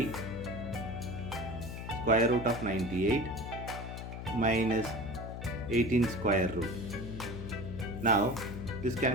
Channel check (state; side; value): noise; left; hum, 8 dB below the sound